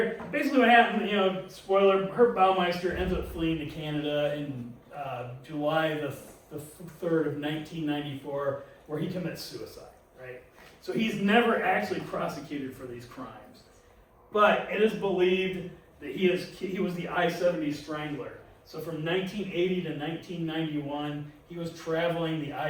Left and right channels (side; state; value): both; identical; correlation 1.00